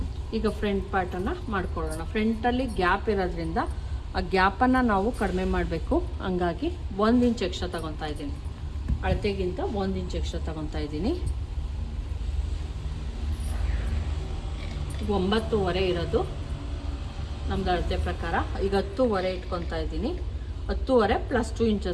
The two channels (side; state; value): both; identical; correlation 1.00